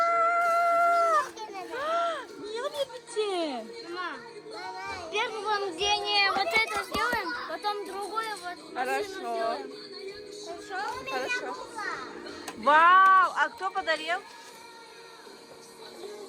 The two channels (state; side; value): identical; both; correlation 1.00